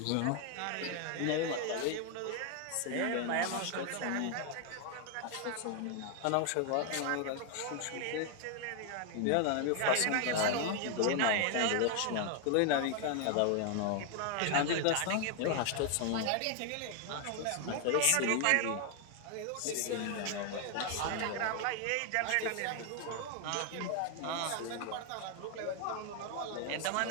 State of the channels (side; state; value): both; different; correlation 0.00